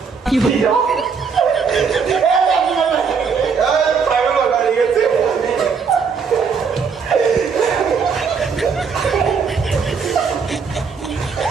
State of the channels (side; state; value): left; quieter; 5.7 dB